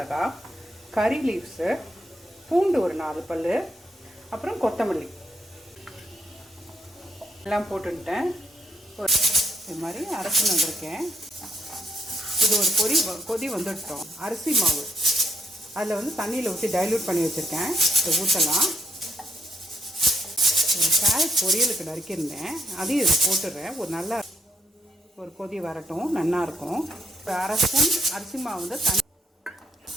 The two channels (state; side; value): normal; both; correlation 0.75